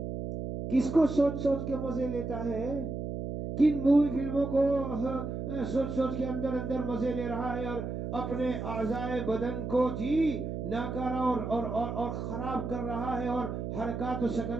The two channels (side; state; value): right; noise; hum, 5 dB below the sound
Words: کس کو سوچ سوچ کے مزے لیتا ہے؟ کن مووی فلموں کو سوچ سوچ کے اندر اندر مزے لے رہا ہے، اور اپنے اعضائے بدن کو ناکارہ اور خراب کر رہا ہے، اور